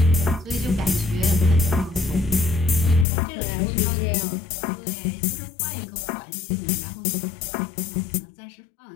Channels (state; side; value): drops out; right; at 3.1 s